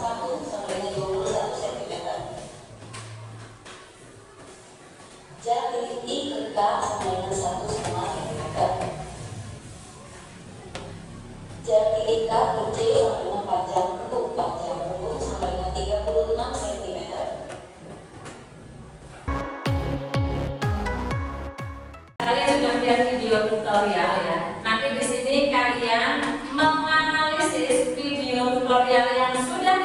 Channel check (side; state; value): both; identical; correlation 1.00